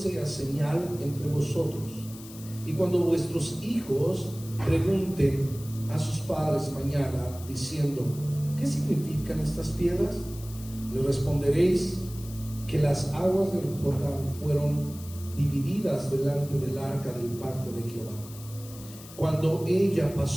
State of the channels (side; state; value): left; noise; hiss, 17 dB below the sound